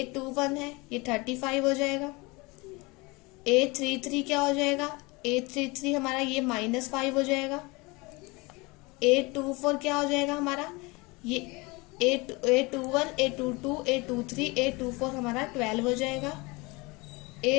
है, ये 35 हो जाएगा। A33 क्या हो जाएगा, A33 हमारा ये -5 हो जाएगा। A24 क्या हो जाएगा हमारा, ये A21, A22, A23, A24 हमारा 12 हो जाएगा।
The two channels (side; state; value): right; quieter; 25.4 dB